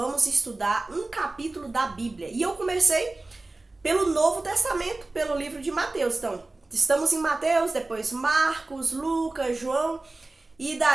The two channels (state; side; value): quieter; left; 3.1 dB